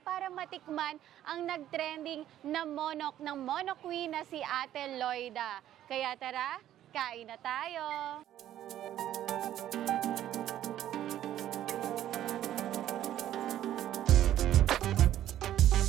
matikman ang nagtrending na monok ng Monok Queen na si Ate Loida. Kaya tara, kain na tayo!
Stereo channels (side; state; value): left; quieter; 12.1 dB